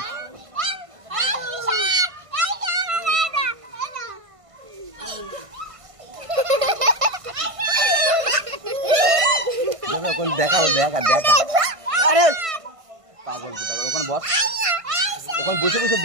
দেখা দেখা দেখা, আরে পাগল কি পাগল, ওখানে বস, ওখানে বসে বসে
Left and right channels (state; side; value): late; left; 1.5 ms